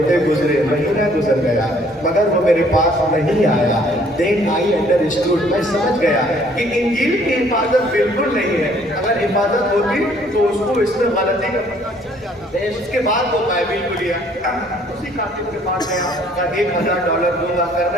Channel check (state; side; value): normal; both; correlation 0.61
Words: गुजरे, महीना गुजर गया, मगर वो मेरे पास नहीं आया। देन आई अंडरस्टूड, मैं समझ गया कि इंजील की हिफाजत बिल्कुल नहीं है। अगर हिफाजत होती तो उसको इसमें गलती का पता चल जाता। उसके बाद वो बाइबिल को लिया, उसी कातिब के पास गया, कहा $1000 दूंगा,